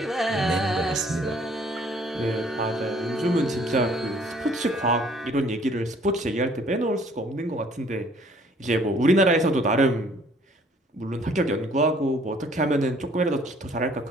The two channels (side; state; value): both; normal; correlation 0.59